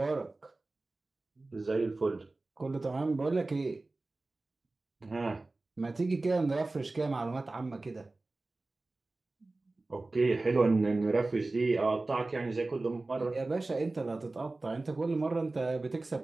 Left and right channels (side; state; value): left; quieter; 3.2 dB